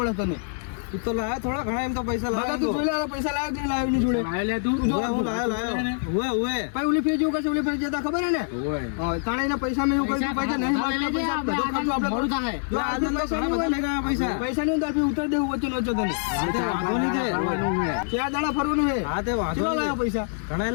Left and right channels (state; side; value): silent; right; 60 dB below the other